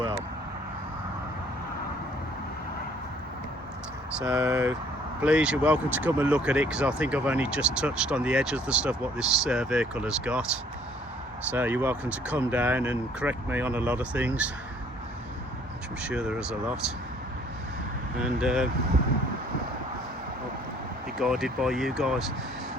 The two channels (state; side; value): normal; both; correlation 0.59